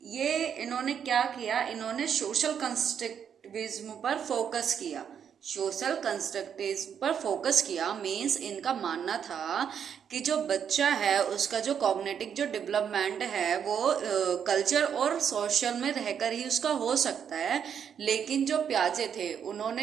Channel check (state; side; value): quieter; left; 8.0 dB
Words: ये इन्होंने क्या किया, इन्होंने सोशल कंस्ट्रक्टिविज्म पर फोकस किया। सोशल कंस्ट्रक्टिविज्म पर फोकस किया मीन्स इनका मानना था कि जो बच्चा है उसका जो कॉग्निटिव जो डेवलपमेंट है वो कल्चर और सोशल में रहकर ही उसका हो सकता है। लेकिन जो प्याजे थे